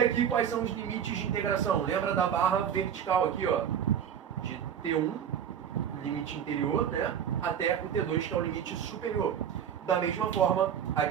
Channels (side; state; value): left; quieter; 8.7 dB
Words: aqui quais são os limites de integração? Lembra da barra vertical aqui, ó, de T1, limite interior, né, até o T2, que é o limite superior. Da mesma forma,